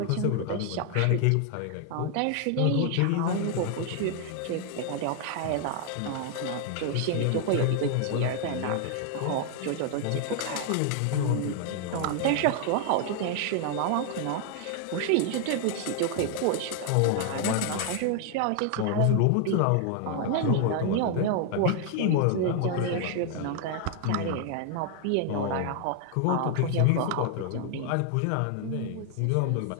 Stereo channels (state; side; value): different; both; correlation 0.00